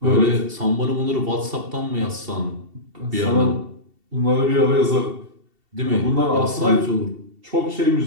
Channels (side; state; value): left; late; 2.7 ms